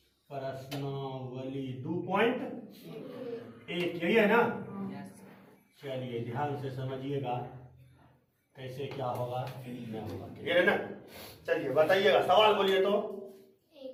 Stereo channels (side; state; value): both; identical; correlation 1.00